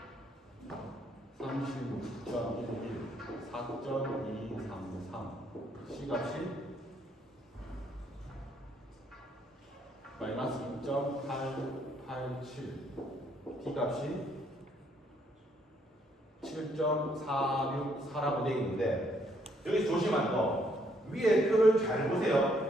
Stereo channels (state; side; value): normal; both; correlation 0.70